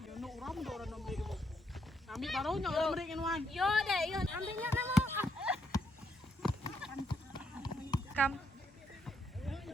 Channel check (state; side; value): normal; both; correlation 0.75